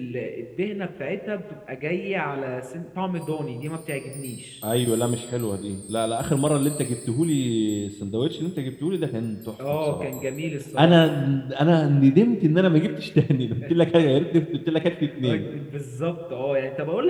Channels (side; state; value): both; identical; correlation 1.00